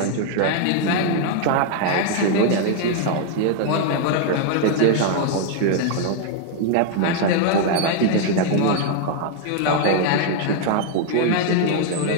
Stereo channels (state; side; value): different; both; correlation 0.00